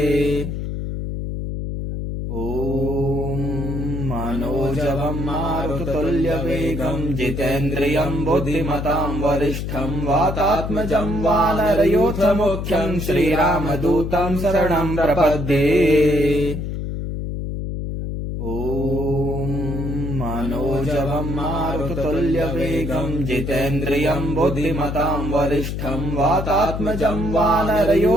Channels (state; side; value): noise; left; hum, 4 dB below the sound